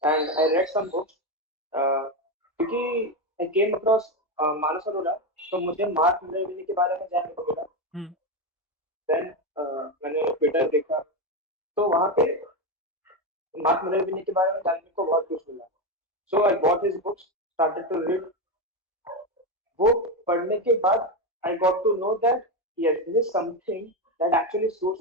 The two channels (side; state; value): both; normal; correlation 0.12